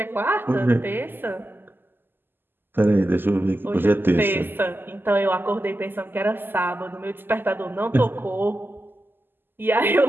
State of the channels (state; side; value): late; left; 0.095 ms